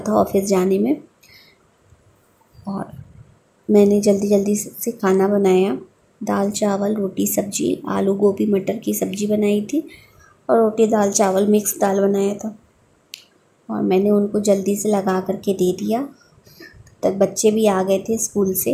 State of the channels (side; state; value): both; identical; correlation 1.00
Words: ऑफिस जाने में। और मैंने जल्दी जल्दी से खाना बनाया, दाल चावल रोटी सब्जी, आलू गोभी मटर की सब्ज़ी बनाई थी और रोटी दाल चावल मिक्स दाल बनाया था। और मैंने उनको जल्दी से लगा करके दे दिया। तब बच्चे भी आ गए थे स्कूल